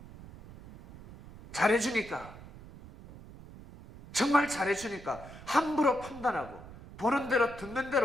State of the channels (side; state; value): right; noise; rumble, 17 dB below the sound